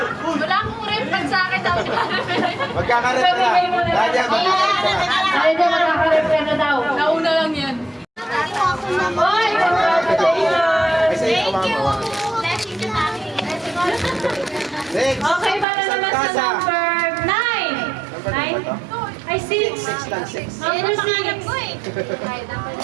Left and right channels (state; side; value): drops out; left; at 15.7 s